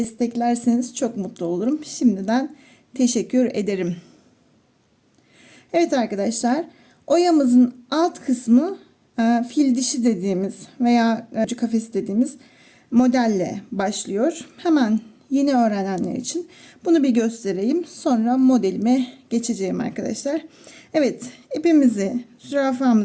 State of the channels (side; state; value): both; identical; correlation 1.00